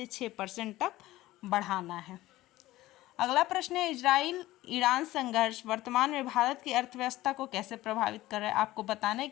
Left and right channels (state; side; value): quieter; right; 16.7 dB